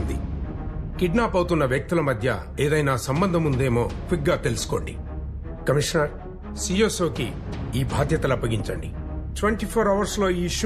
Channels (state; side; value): identical; both; correlation 1.00